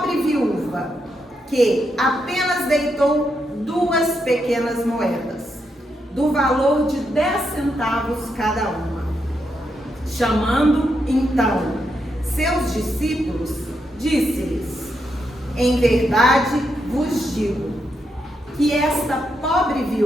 viúva que apenas deitou 2 pequenas moedas, do valor de 10 centavos cada uma. Chamando então seus discípulos, disse-lhes: em verdade vos digo que esta pobre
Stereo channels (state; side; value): normal; both; correlation 0.82